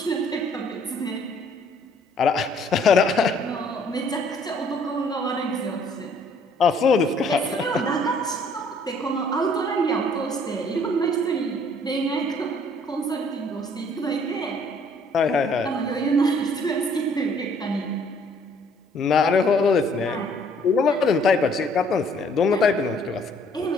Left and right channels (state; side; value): normal; both; correlation 0.61